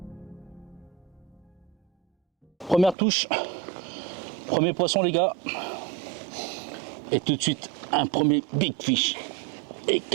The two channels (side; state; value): left; drops out; at 3.0 s